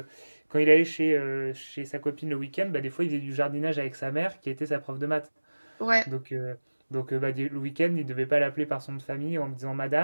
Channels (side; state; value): both; inverted; correlation -1.00